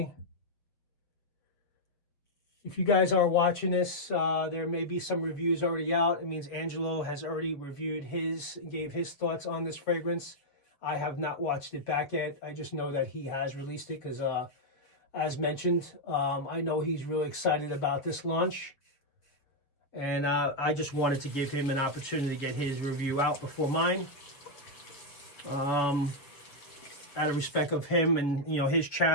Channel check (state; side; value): late; right; 6.9 ms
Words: If you guys are watching this, there may be some reviews already out. It means Angelo has already reviewed his and gave his thoughts on this fragrance. I have not watched it back yet. I just know that he has released it because, as mentioned, I know he's really excited about this launch. And I just wanted to give him an opportunity to get his review out before mine. Out of respect of him and, you know, his